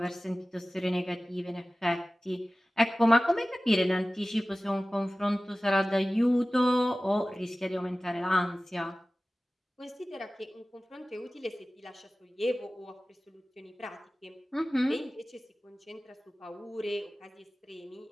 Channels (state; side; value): normal; both; correlation 0.97